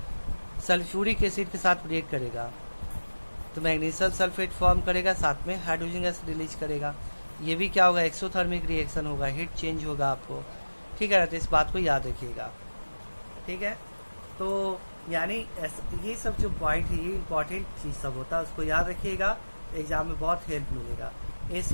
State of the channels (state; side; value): inverted; both; correlation -1.00